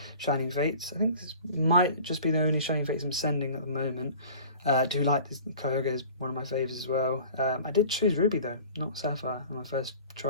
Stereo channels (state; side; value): inverted; both; correlation -0.44